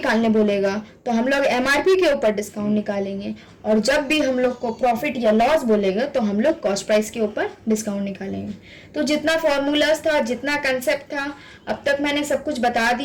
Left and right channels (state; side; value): identical; both; correlation 1.00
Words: बोलेगा तो हम लोग एमआरपी के ऊपर डिस्काउंट निकालेंगे, और जब भी हम लोग को प्रॉफिट या लॉस बोलेगा तो हम लोग कॉस्ट प्राइस के ऊपर डिस्काउंट निकालेंगे। तो जितना फॉर्मूलाज था, जितना कंसेप्ट था, अब तक मैंने सब कुछ बता